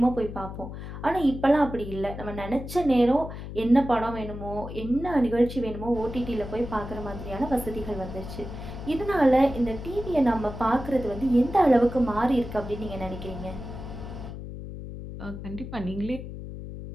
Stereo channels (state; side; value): noise; left; hum, 10 dB below the sound